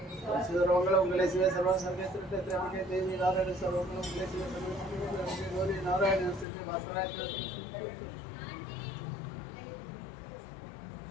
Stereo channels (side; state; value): right; drops out; at 6.5 s